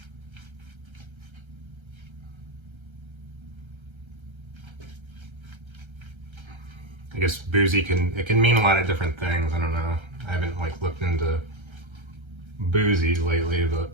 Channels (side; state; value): left; late; 1.3 ms